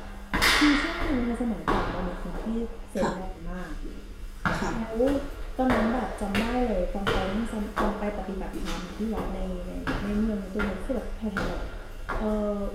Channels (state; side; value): identical; both; correlation 1.00